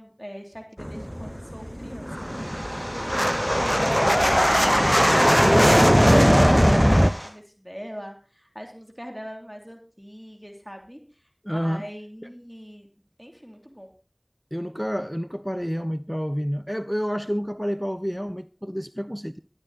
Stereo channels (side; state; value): both; identical; correlation 1.00